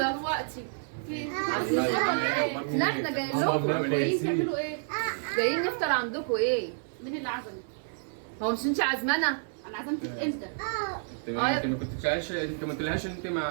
دلوقتي لا احنا جايين لكم. جايين تعملوا ايه؟ جايين نفطر عندكم ايه؟ مين اللي عزمك؟ هو مش انت عازمانا؟ انا عزمتك امتى؟ انت ما كنتش انت ما قلتلهاش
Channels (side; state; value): left; silent; 58 dB below the other